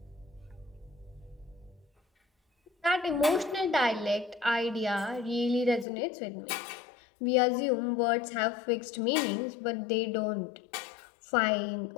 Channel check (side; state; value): right; drops out; at 5.9 s